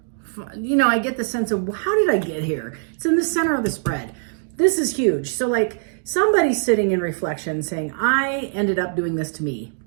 You know, I get the sense of, how did I get here? It's in the center of the spread. This is huge. So like somebody's sitting in reflection saying, I ended up doing this to me.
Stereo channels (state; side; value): silent; left; digital silence